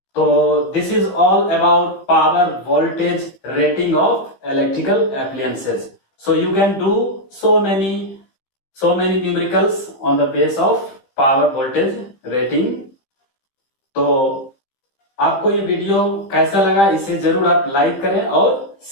So this is all about power voltage rating of electrical appliances. So you can do so many numericals on the base of power voltage rating. तो आपको ये video कैसा लगा, इसे जरूर आप like करें और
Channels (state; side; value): late; right; 15 ms